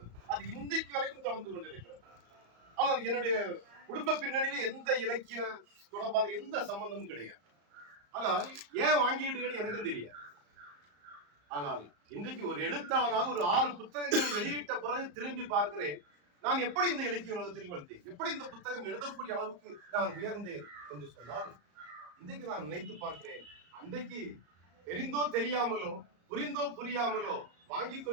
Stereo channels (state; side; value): late; left; 34 ms